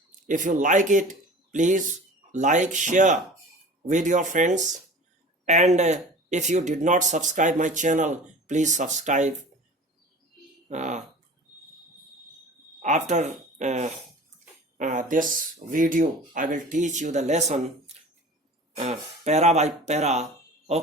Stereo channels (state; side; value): normal; both; correlation 0.40